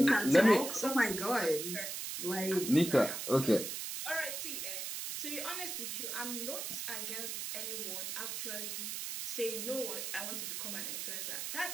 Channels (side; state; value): right; noise; hiss, 4 dB below the sound